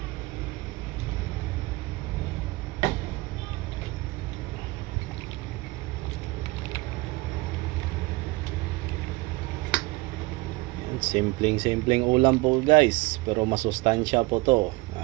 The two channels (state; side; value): quieter; left; 22.9 dB